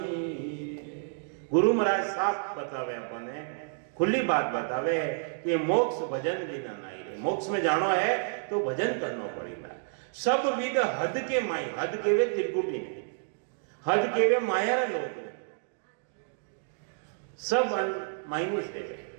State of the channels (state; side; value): silent; left; digital silence